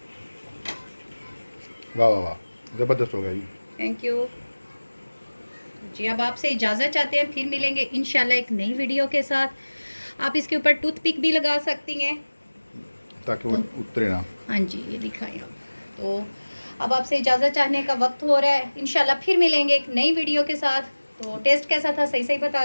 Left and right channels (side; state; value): both; inverted; correlation -1.00